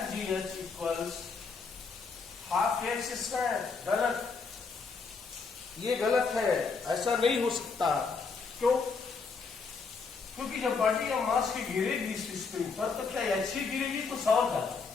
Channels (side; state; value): right; quieter; 4.8 dB